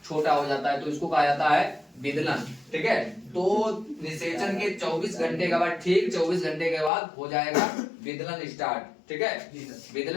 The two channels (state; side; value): drops out; right; at 6.9 s